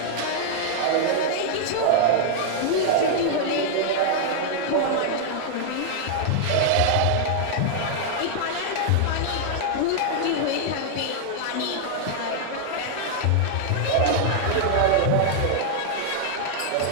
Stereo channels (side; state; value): both; different; correlation -0.01